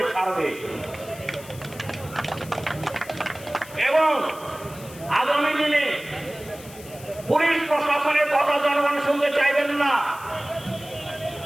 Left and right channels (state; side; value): noise; left; hiss, 18 dB below the sound